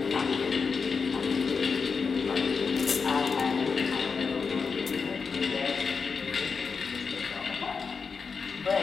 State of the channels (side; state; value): right; quieter; 5.2 dB